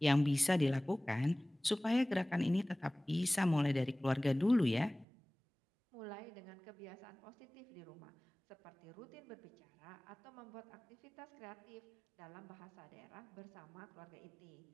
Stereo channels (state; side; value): drops out; left; at 5.1 s